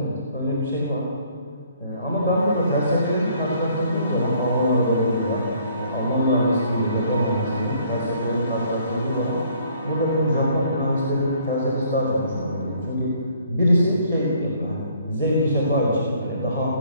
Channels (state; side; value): inverted; both; correlation -0.62